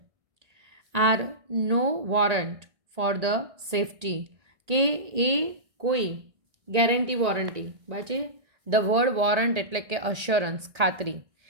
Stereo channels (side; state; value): left; late; 1.8 ms